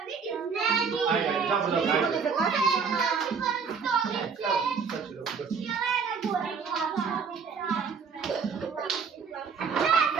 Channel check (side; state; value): left; quieter; 5.8 dB